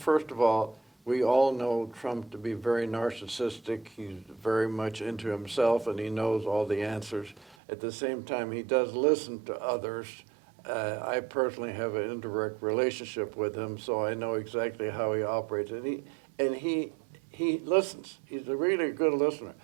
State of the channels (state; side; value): drops out; left; at 7.6 s